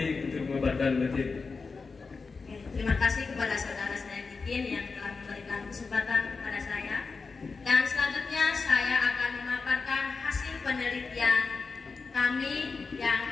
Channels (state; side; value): quieter; right; 4.5 dB